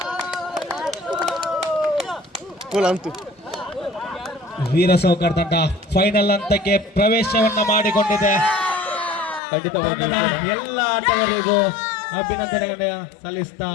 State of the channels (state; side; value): drops out; right; at 9.4 s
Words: ಅಂತೂ ವೀರ ಸೌಕರ್ ತಂಡ ಫೈನಲ್ ಹಂತಕ್ಕೆ ಪ್ರವೇಶವನ್ನ ಮಾಡಿಕೊಂಡಿದೆ. ಖಂಡಿತವಾಗಿ ಎಲ್ಲ ಆಟಗಾರರಿಗೂ ಅಭಿನಂದನೆಗಳನ್ನ ಸಲ್ಲಿಸ್ತಾ